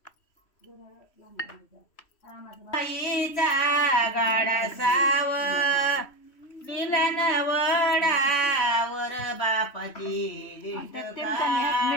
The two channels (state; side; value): late; right; 3.1 ms